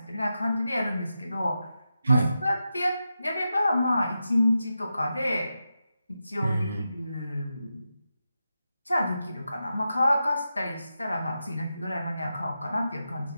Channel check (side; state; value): both; inverted; correlation -0.89